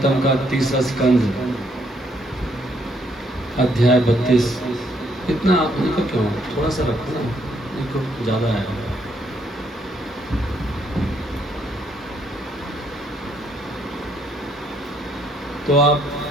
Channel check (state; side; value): normal; both; correlation 0.71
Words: का 30वां स्कंद अध्याय 32। इतना इनको क्यों थोड़ा सा रखो ना, इनको ज़्यादा है। तो आप